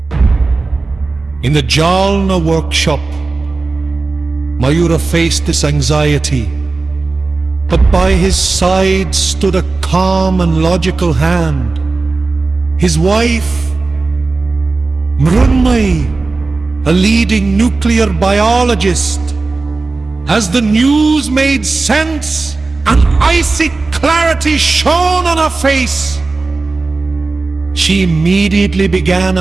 In the Jalna workshop, Mayura faced this anxiety, but by his side stood a calm and logical hand. His wife, Mrunmayi, a leading nuclear biologist. As the news made sense, an icy clarity shone on her face. She immediately began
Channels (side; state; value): left; quieter; 3.7 dB